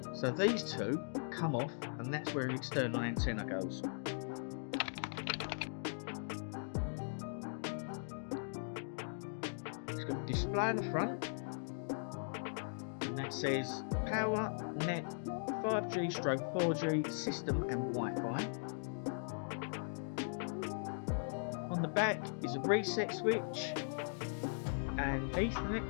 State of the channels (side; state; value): right; silent; digital silence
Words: So these two come off, and that's where the external antenna goes. It's got a display on the front, and that says Power Net 5G/4G system and Wi-Fi. On the back is a reset switch, an